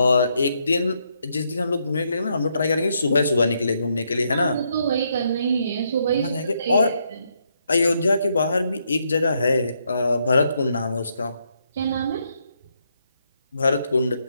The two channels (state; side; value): inverted; both; correlation -0.77